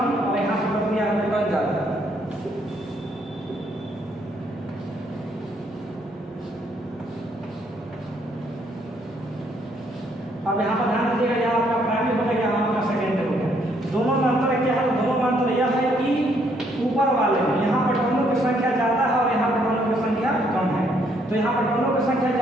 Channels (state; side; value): normal; both; correlation 0.70